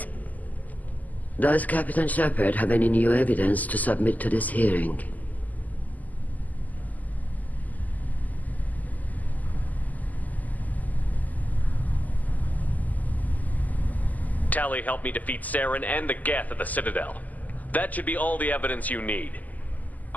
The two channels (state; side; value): late; right; 0.080 ms